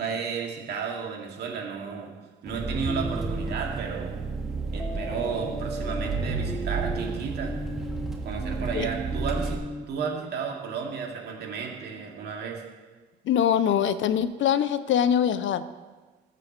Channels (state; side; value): normal; both; correlation 0.27